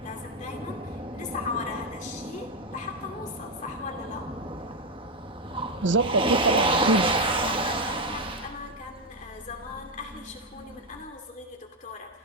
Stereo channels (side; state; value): both; normal; correlation 0.07